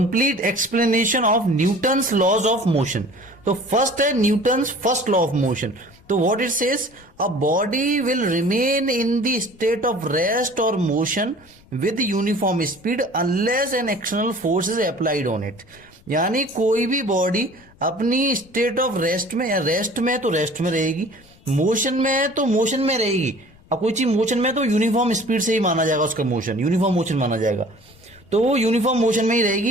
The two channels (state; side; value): noise; left; rumble, 27 dB below the sound